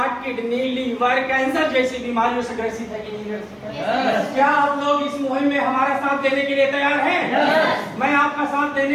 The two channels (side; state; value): both; identical; correlation 1.00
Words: kidney, liver, cancer जैसी बीमारियों से ग्रसित है कि नहीं ग्रसित? क्या आप लोग इस मुहिम में हमारा साथ देने के लिए तैयार हैं? मैं आपका साथ